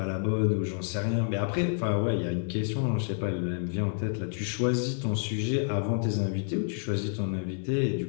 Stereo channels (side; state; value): right; silent; 59 dB below the other